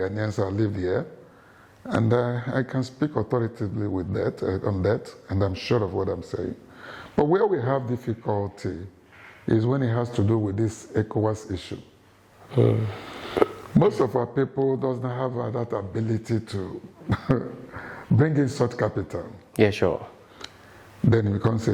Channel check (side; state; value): both; identical; correlation 1.00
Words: I lived here, and I can speak authoritatively with that on that, and I'm sure of what I'm saying. But where we have difficulty is when it has to do with this ECOWAS issue. Most of our people doesn't have that ability to bring in such capital. Yeah, sure. Then it becomes